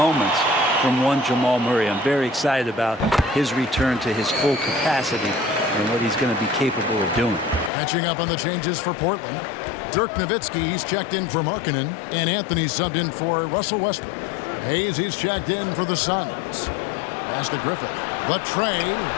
from one Jamal Murray. I'm very excited about his return to his full capacity and what he's going to be capable of doing. Catching up on the changes for Portland. Dirk Nowitzki, he's checked in for Markkanen, and Anthony subbed in for Russell Westbrook. Hayes, he's checked in for the Suns. Pass to Griffith. Latrey.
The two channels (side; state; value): right; drops out; at 7.7 s